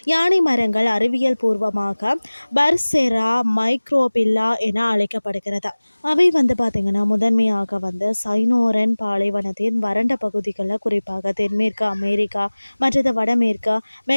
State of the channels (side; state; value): both; inverted; correlation -1.00